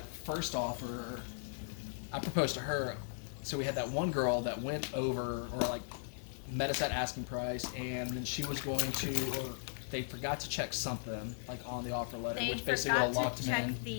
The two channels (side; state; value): right; silent; digital silence